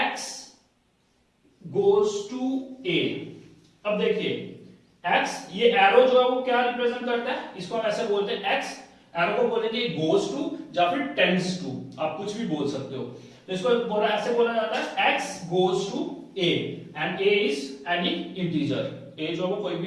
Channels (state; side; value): identical; both; correlation 1.00